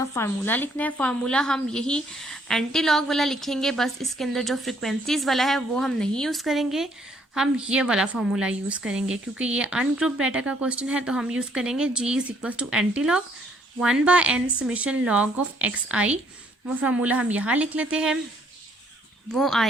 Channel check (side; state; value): both; normal; correlation 0.66